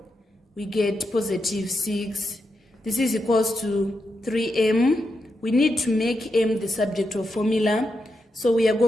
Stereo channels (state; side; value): normal; both; correlation 0.85